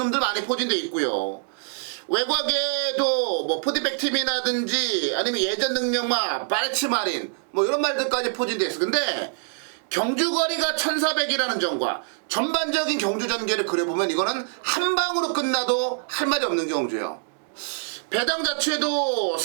많이 포진돼 있고요. 외곽에도 뭐 포디백 팀이라든지 아니면 예전 능력마 바레츠 마린 뭐 이런 말들까지 포진돼 있어. 근데 경주거리가 1400이라는 점과 전반적인 경주 전개를 그려보면 이거는 한 방으로 끝나도 할 말이 없는 경주예요. 배당 자체도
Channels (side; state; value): left; silent; digital silence